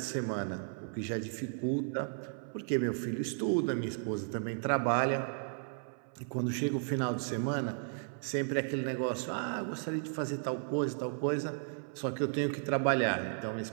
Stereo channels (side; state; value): left; silent; 55 dB below the other